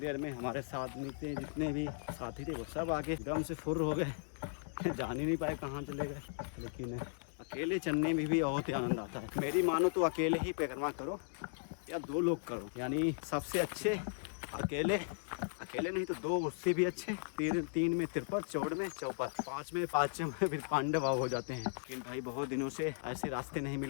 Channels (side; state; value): right; silent; digital silence